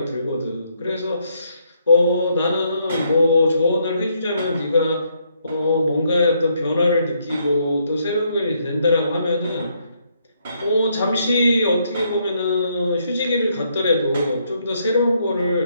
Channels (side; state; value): both; inverted; correlation -0.73